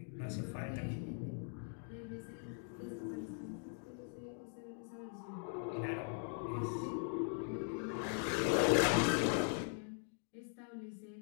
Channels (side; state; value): right; silent; 50 dB below the other